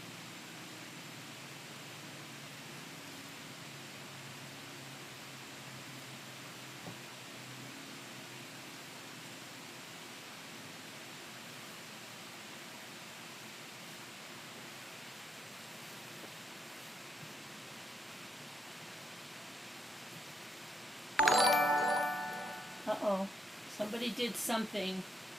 Uh-oh. Somebody did something.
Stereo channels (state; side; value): normal; both; correlation 0.81